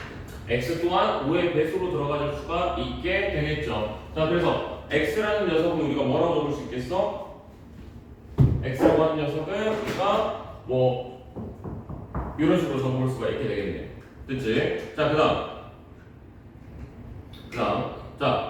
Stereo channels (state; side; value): identical; both; correlation 1.00